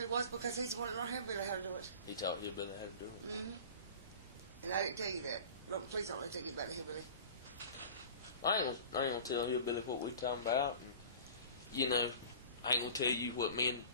was because he's the one that learned Hillbilly how to do it. He taught Hillbilly how to do it. Mm-hmm. And I didn't tell you that. No, please don't let me tell you about the Hillbilly. I ain't gonna tell Hillbilly what we talking about. And, you know, I ain't gonna tell you what me and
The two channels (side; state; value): both; inverted; correlation -0.40